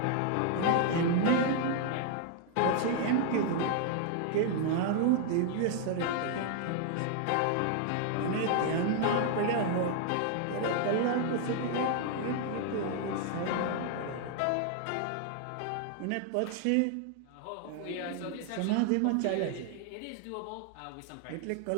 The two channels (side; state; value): both; different; correlation 0.00